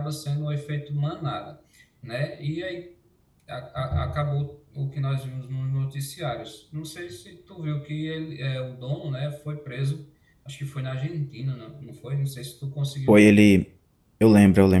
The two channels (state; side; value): identical; both; correlation 1.00